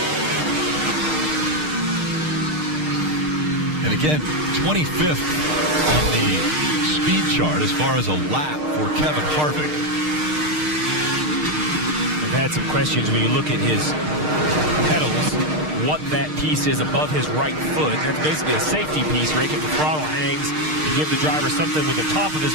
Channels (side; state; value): left; late; 6.5 ms